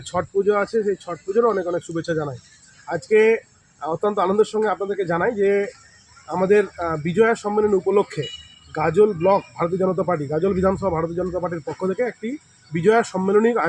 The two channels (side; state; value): both; identical; correlation 1.00